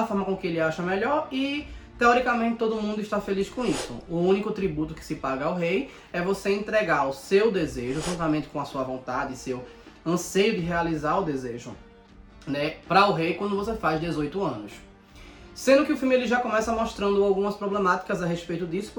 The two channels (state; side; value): identical; both; correlation 1.00